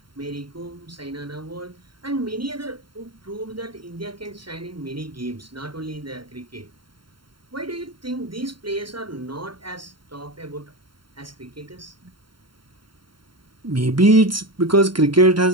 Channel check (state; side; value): late; left; 0.73 ms